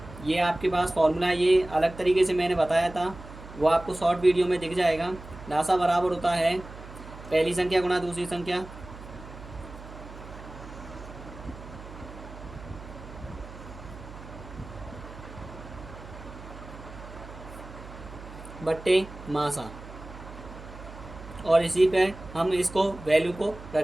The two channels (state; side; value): noise; right; hum, 15 dB below the sound